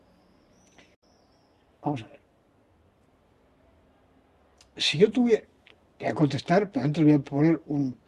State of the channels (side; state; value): both; identical; correlation 1.00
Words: Vamos a ver. Si yo tuviera... Voy a contestar, pero antes voy a poner un